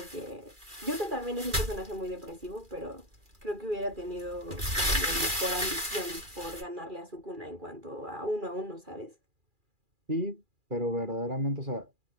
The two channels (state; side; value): late; left; 2.4 ms